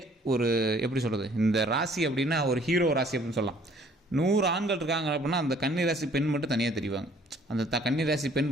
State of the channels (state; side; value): normal; both; correlation 0.58